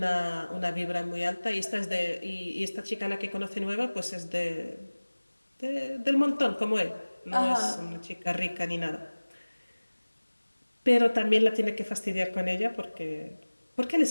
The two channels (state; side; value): inverted; both; correlation -1.00